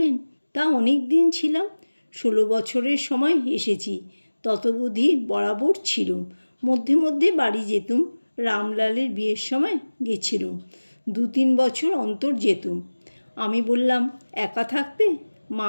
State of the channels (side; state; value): both; inverted; correlation -1.00